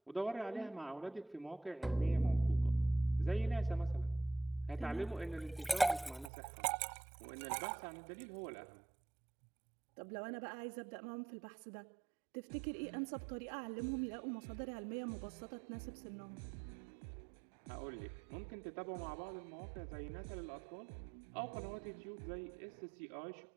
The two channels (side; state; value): left; drops out; at 6.3 s